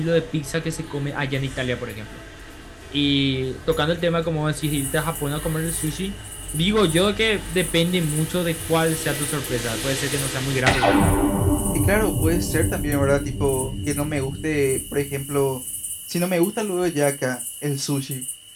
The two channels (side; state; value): both; identical; correlation 1.00